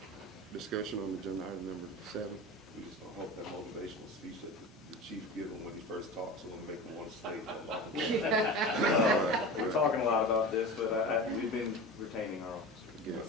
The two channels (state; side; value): normal; both; correlation 0.31